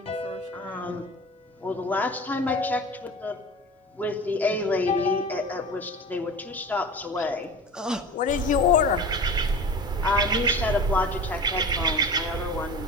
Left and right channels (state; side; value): normal; both; correlation 0.35